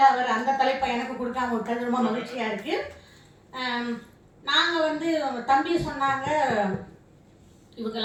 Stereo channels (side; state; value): both; identical; correlation 1.00